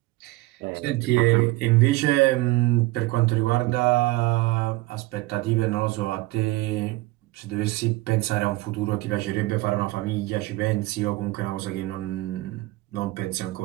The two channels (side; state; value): left; quieter; 19.6 dB